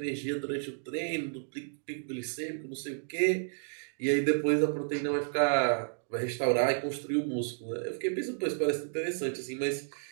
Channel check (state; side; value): silent; left; digital silence